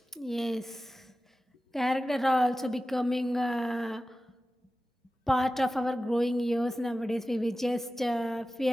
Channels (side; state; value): both; normal; correlation 0.95